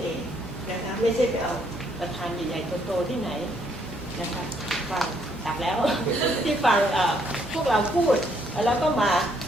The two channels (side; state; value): both; normal; correlation 0.70